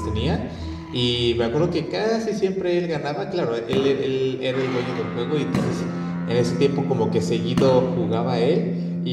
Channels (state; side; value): identical; both; correlation 1.00